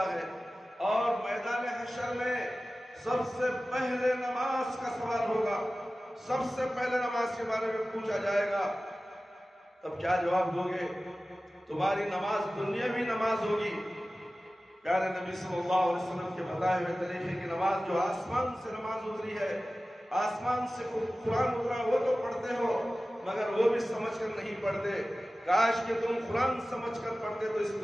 ہے، اور میدان حشر میں سب سے پہلے نماز کا سوال ہوگا، سب سے پہلے نماز کے بارے میں پوچھا جائے گا، تب کیا جواب دو گے؟ تمہاری نماز دنیاوی نماز ہوگی، پیارے نبی صلی اللہ علیہ وسلم کے بتائے ہوئے طریقے کی نماز، جو آسمان سے نماز اتری ہے، آسمان سے قرآن اترا، وہ تو پڑھتے ہو مگر وہ بھی سمجھ کر نہیں پڑھتے۔ کاش کہ تم قرآن سمجھ کر پڑھتے تو اس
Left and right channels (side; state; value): both; normal; correlation 0.96